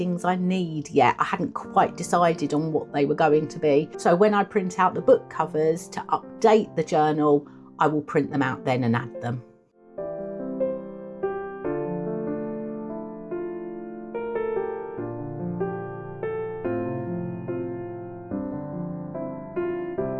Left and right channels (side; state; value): both; identical; correlation 1.00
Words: I need yet. I hadn't quite decided on what they were going to be. So when I print out the book covers to update the journal, I will print them out then and add them.